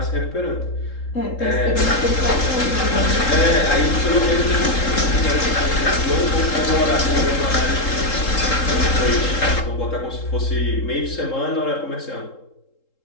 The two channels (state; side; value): late; right; 3.8 ms